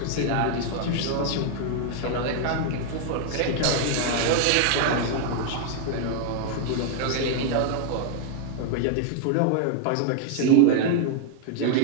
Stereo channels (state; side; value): different; both; correlation 0.00